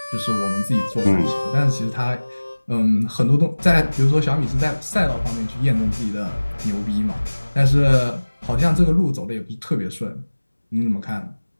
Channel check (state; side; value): inverted; both; correlation -1.00